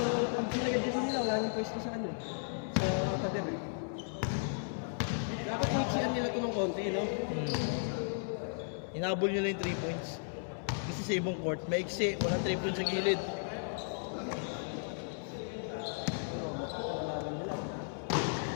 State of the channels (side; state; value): right; silent; 54 dB below the other